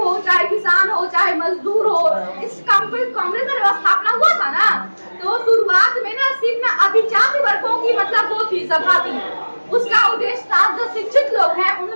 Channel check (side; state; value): both; inverted; correlation -1.00